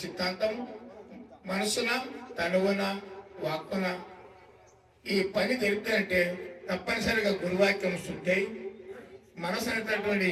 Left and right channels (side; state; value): both; identical; correlation 1.00